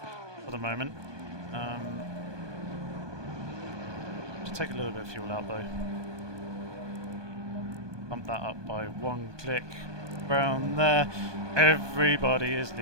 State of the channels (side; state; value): left; late; 1.2 ms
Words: for the moment. Should take a little bit of fuel out though. Bump that up by one click. Around there. Everybody is